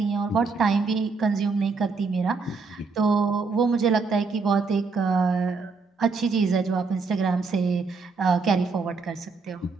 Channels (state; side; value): quieter; left; 4.4 dB